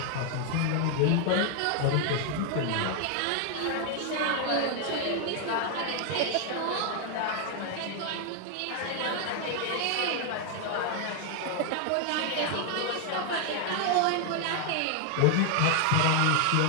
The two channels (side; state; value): both; different; correlation 0.00